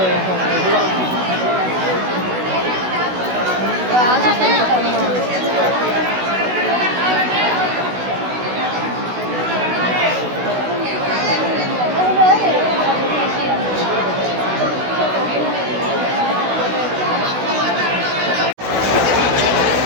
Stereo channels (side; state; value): left; late; 16 ms